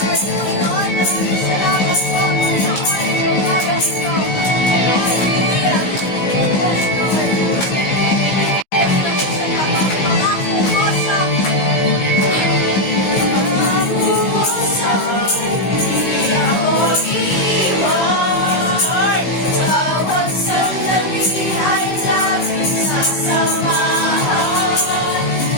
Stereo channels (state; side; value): late; right; 15 ms